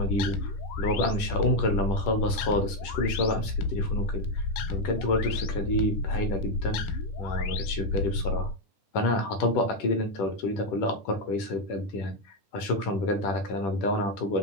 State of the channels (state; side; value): late; right; 10 ms